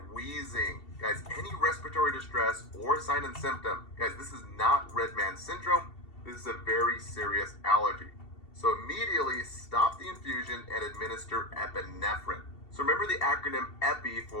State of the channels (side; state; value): right; late; 2.7 ms